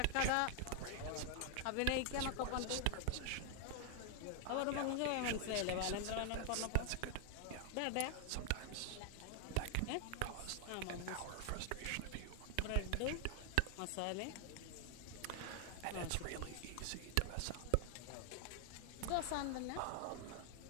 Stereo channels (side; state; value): both; different; correlation 0.00